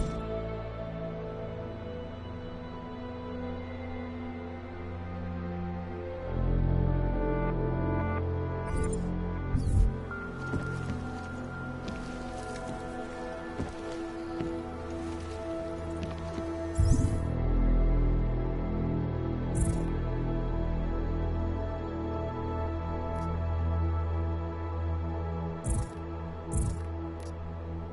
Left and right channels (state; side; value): identical; both; correlation 1.00